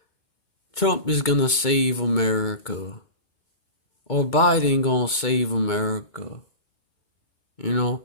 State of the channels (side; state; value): right; late; 2.2 ms